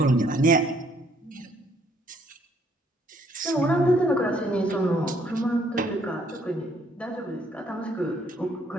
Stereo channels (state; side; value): normal; both; correlation 0.66